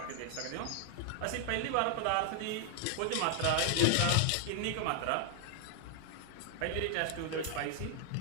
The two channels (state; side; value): different; both; correlation 0.00